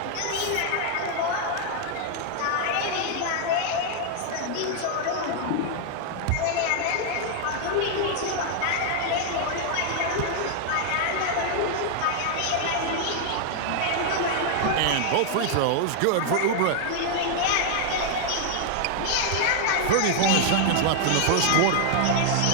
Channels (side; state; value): both; different; correlation 0.00